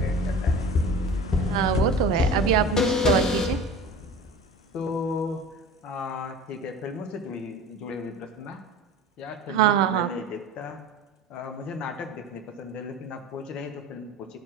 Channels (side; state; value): both; normal; correlation 0.37